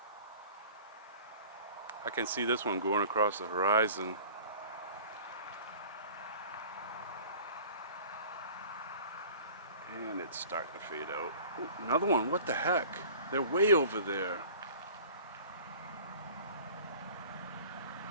I can see this one going across the horizon. And it's starting to fade out. Ooh, another one, what the heck? They're way over there.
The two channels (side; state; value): both; inverted; correlation -0.45